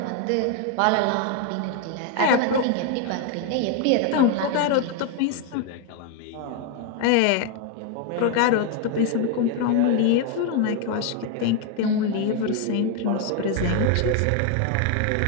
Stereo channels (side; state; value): both; different; correlation 0.01